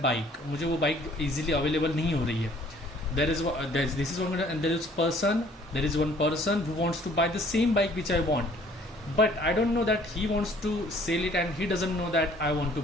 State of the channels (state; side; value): normal; both; correlation 0.57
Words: bike. मुझे वो bike easily available नहीं हो रही है. This is one, and there is one person who wants to buy the same bike which I want, but I don't know that he wants to sell it, and he doesn't know that I want to